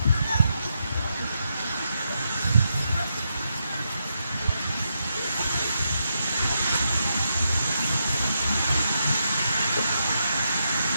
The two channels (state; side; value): inverted; both; correlation -0.83